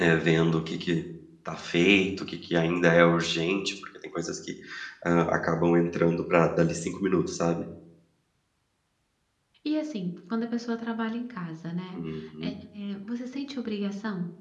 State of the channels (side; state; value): both; identical; correlation 1.00